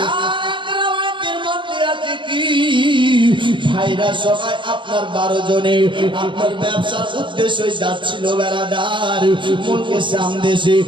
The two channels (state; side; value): late; left; 0.24 ms